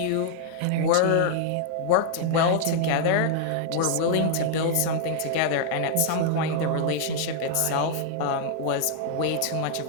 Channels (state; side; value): different; both; correlation -0.01